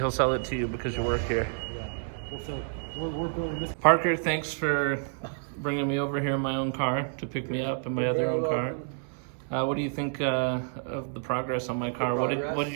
sell it to you because you work here. Yeah, we're building this. Parker, thanks for bringing me over here in my own car to pick me up in my other own car. What do you think of the progress on my car? What did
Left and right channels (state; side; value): silent; left; 59 dB below the other